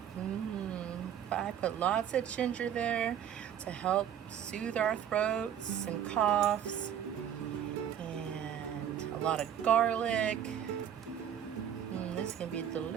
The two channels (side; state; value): left; quieter; 9.5 dB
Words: But I put lots of ginger there to help soothe our throats and coughs. And a lot of garlic. This is gonna be